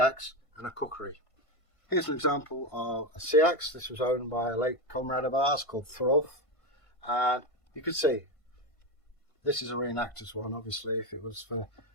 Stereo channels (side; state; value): right; late; 1.5 ms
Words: and a Kukri? Here's an example of a Seax. This was owned by a late comrade of ours called Thorkelsson, and you can see this is a reenactor's one. Obviously, if it was for